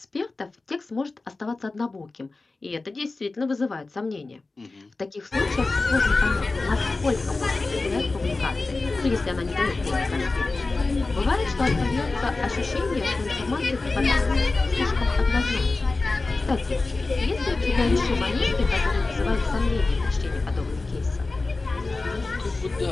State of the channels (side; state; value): right; quieter; 3.5 dB